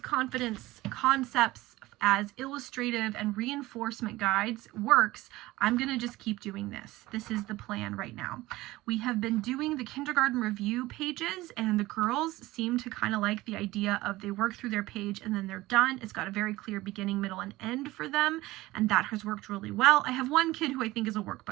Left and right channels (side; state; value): left; quieter; 18.5 dB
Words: Confidence concepts as illustrative and reinforcement guides works, I'm going to just keep doing this. This is the plan right now. We have been doing the kindergarten review pages, and the girls seem to kind of like the idea of they work through their page and then they're done. It's got a very clear beginning, middle, and end for them, and that has worked really well. I have one kid who I think is a